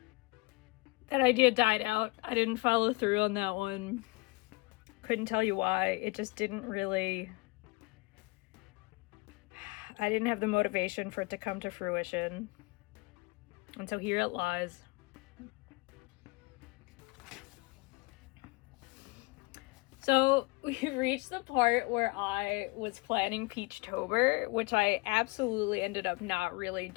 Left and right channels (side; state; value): right; quieter; 26.5 dB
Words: that idea died out. I didn't follow through on that one. Couldn't tell you why. It just didn't really... I didn't have the motivation for it to come to fruition. And so here it lies. So we've reached the part where I was planning Peachtober, which I absolutely ended up not really